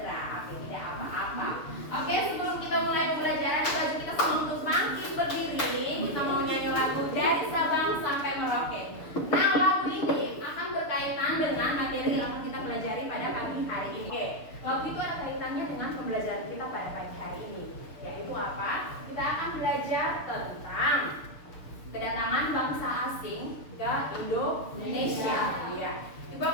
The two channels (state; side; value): late; right; 6.6 ms